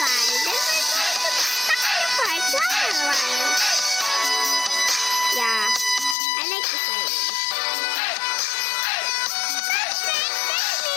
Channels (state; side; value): drops out; right; at 6.2 s